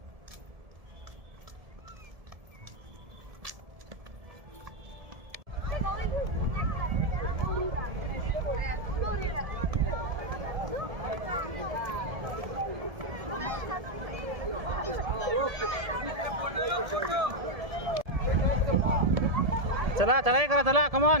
चला चढाई करा. चला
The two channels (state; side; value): late; left; 1.7 ms